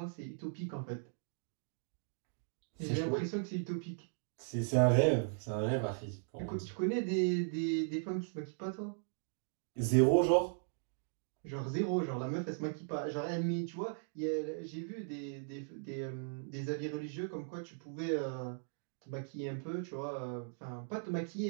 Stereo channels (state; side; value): silent; left; digital silence